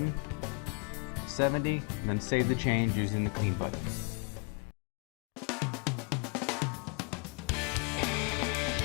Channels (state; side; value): quieter; right; 35.7 dB